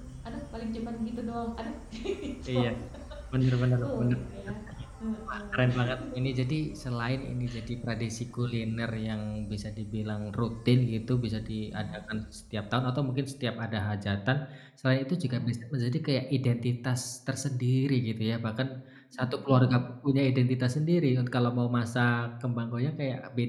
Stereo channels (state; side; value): identical; both; correlation 1.00